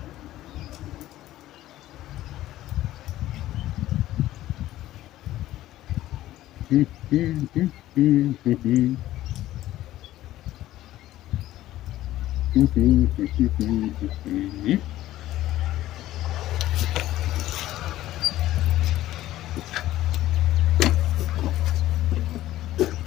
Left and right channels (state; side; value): quieter; right; 14.6 dB